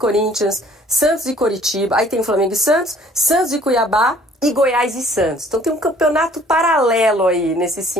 Santos e Coritiba, aí tem Flamengo e Santos, Santos e Cuiabá e Goiás e Santos. Então tem um campeonato paralelo aí nesses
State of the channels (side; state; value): both; normal; correlation 0.56